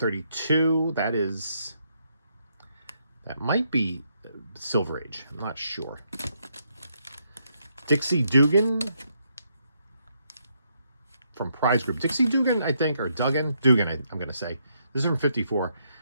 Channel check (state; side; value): inverted; both; correlation -0.76